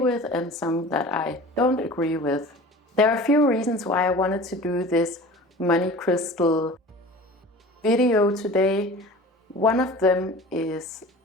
and some that I don't agree with. There are a few reasons why I wanted to do this money crystal video today. One of them is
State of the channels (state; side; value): normal; both; correlation 0.40